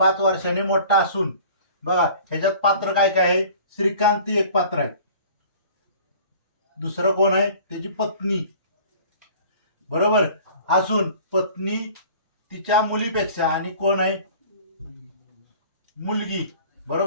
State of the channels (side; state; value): both; inverted; correlation -0.47